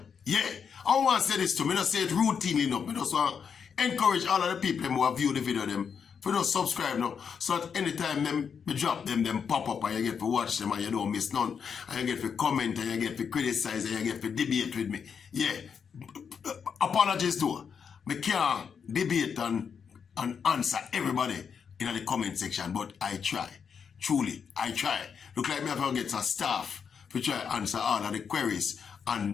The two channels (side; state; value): right; quieter; 6.7 dB